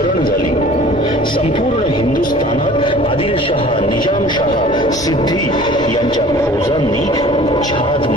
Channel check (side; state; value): both; normal; correlation 0.47